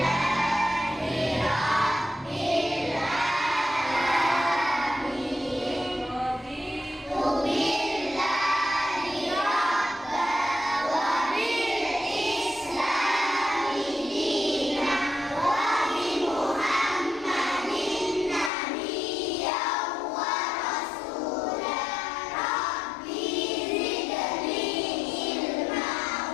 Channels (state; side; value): drops out; right; at 18.5 s